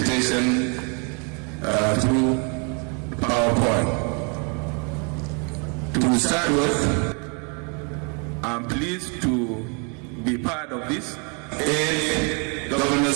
through PowerPoint. To start with, I'm pleased to be part of this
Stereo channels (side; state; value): left; quieter; 35.9 dB